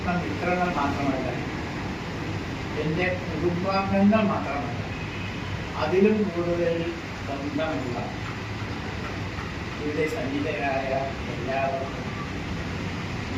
മാത്രമല്ല, എൻ്റെ കുടുംബാംഗങ്ങൾ മാത്രമല്ല, അതിലും കൂടുതൽ ബന്ധമുള്ള ഇവിടെ സന്നിധരായ എല്ലാവർക്കും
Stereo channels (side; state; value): both; identical; correlation 1.00